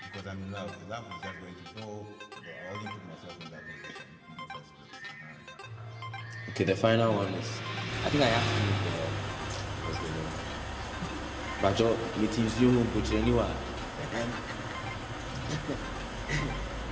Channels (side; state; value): both; identical; correlation 1.00